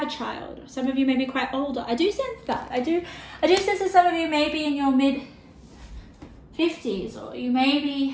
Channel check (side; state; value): both; identical; correlation 1.00